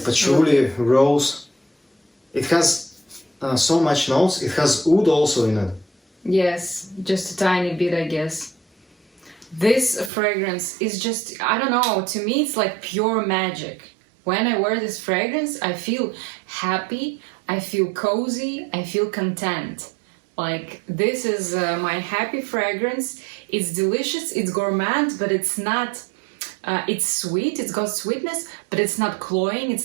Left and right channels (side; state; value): left; drops out; at 10.1 s